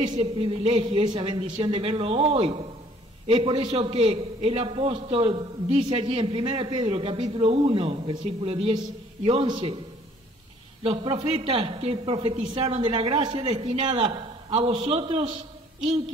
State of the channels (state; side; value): normal; both; correlation 0.58